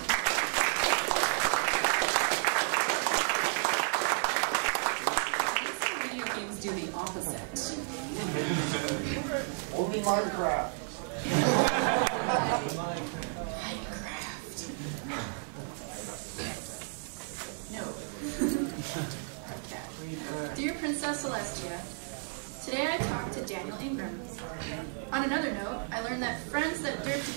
Video games do the opposite. Only Minecraft. Minecraft. No. Okay. Dear Princess Celestia, today I talked to Daniel Ingram. On another note, I learned that friends that derp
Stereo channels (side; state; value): left; silent; 56 dB below the other